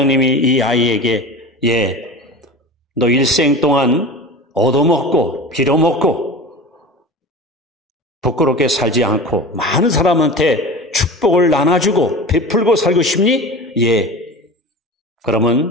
이 아이에게 너 일생 동안 얻어먹고 빌어먹고 부끄럽게 살지 않고 많은 사람한테 축복을 나눠주고 베풀고 살고 싶니? 예.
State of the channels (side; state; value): both; normal; correlation 0.33